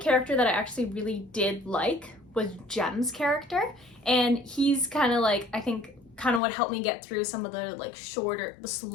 that I actually really did like was Jem's character, and he's kind of like, I think, kind of what helped me get through some of the like shorter, the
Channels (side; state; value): right; drops out; at 6.4 s